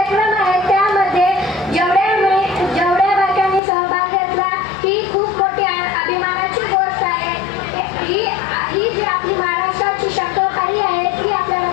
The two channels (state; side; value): drops out; right; at 3.6 s